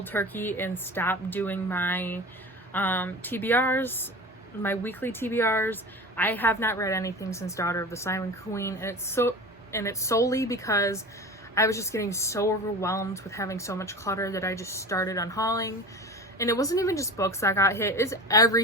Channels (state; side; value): normal; both; correlation 0.33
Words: turkey and stopped doing my TBRs, my weekly TBRs. I have not read anything since Daughter of the Silent Queen, and it's solely because I was just getting so overwhelmed with having so much clutter that I just started unhauling. And it wasn't even just books that got hit, it's